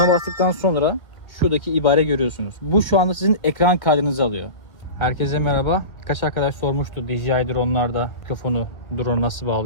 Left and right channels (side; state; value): right; late; 1.5 ms